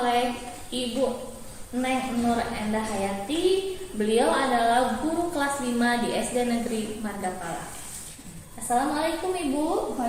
Ibu Neng Nur Endah Hayati. Beliau adalah guru kelas 5 di SD Negeri Margapala. Assalamualaikum Ibu.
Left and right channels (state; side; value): identical; both; correlation 1.00